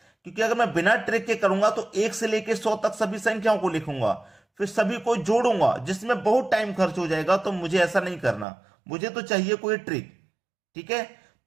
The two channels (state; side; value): drops out; left; at 8.5 s